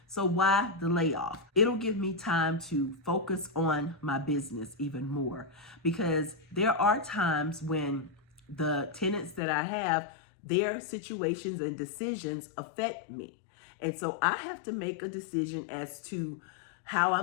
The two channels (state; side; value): drops out; right; at 9.4 s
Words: So why the layoff? It'll give me time to focus on my business even more because there are times when the tenants that I have, their situations and decisions affect me. And so I have to make a decision as to how